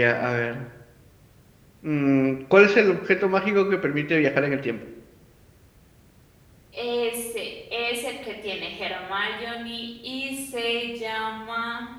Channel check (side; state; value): both; identical; correlation 1.00